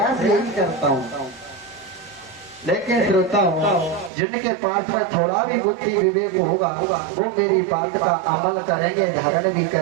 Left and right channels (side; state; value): left; drops out; at 4.1 s